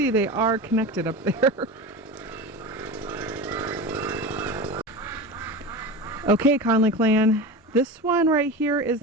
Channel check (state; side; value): normal; both; correlation 0.28